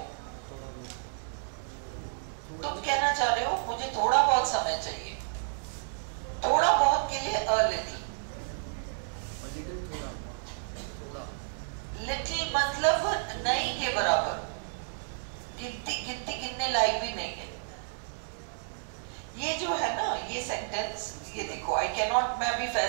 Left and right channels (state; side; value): silent; left; digital silence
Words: तुम कहना चाह रहे हो मुझे थोड़ा बहुत समय चाहिए. थोड़ा बहुत के लिए a little. लिटिल मतलब नहीं के बराबर. गिनने लायक भी नहीं है. ये जो है ना ये सेंटेंस, ये देखो. आई कैन नॉट, मैं अभी